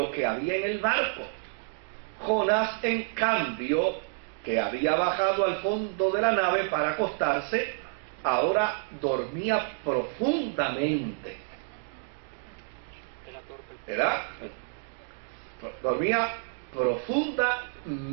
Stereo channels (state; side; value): silent; left; 59 dB below the other